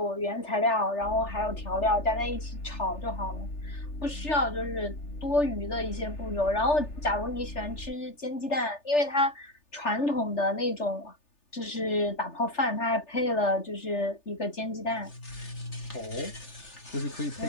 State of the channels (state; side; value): late; right; 3.4 ms